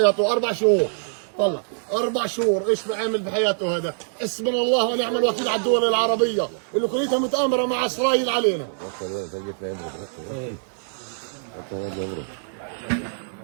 4 شهور طلع 4 شهور، ايش عمل في حياته هذا؟ حسبنا الله ونعم الوكيل على الدول العربيه اللي كليتها متآمره مع اسرائيل علينا.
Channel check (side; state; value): left; silent; digital silence